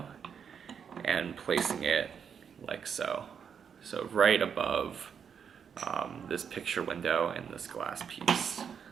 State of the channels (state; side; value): quieter; left; 7.2 dB